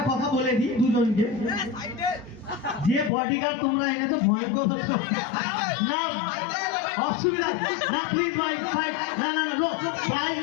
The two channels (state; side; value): drops out; right; at 3.1 s